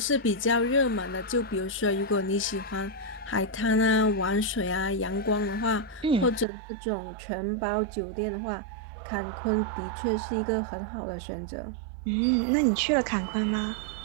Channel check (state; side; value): drops out; left; at 6.5 s